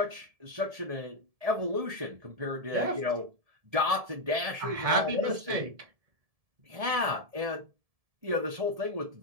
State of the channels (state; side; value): late; left; 1.7 ms